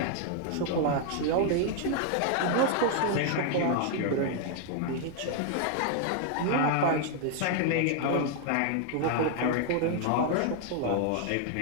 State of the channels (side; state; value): both; different; correlation 0.00